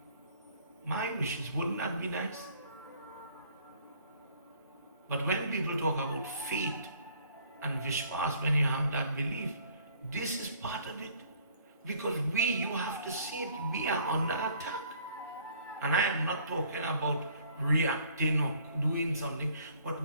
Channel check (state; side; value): inverted; both; correlation -0.57